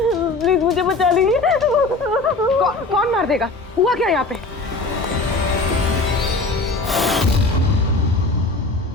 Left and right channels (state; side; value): quieter; right; 3.3 dB